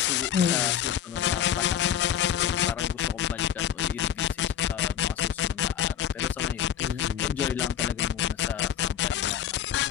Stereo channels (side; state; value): right; quieter; 9.8 dB